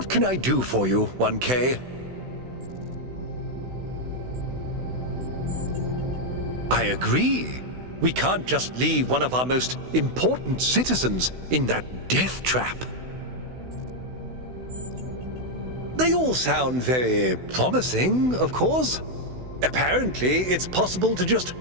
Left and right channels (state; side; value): late; left; 16 ms